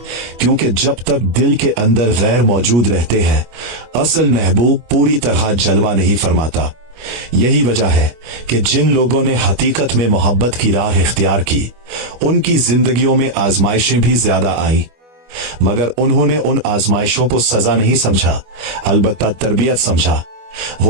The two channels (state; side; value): late; left; 25 ms